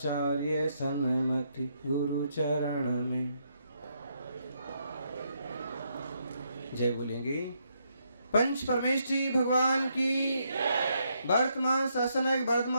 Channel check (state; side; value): inverted; both; correlation -0.76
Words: सन्मति गुरु चरण में जय बोलेंगे। पंच परमेष्ठी भगवान की, वर्तमान शासनक